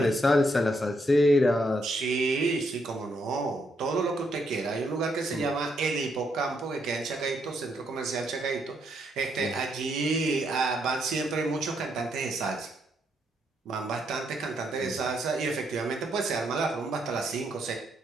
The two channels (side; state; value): both; normal; correlation 0.76